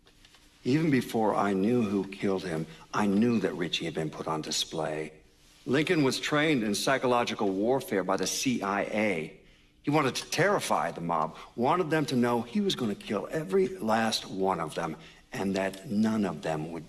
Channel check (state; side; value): identical; both; correlation 1.00